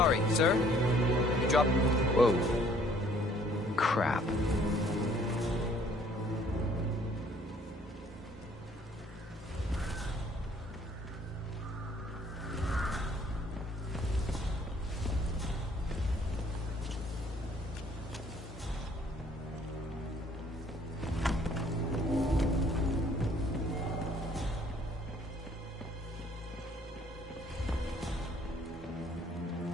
sir. You dropped... Whoa. Crap.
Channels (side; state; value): both; normal; correlation 0.60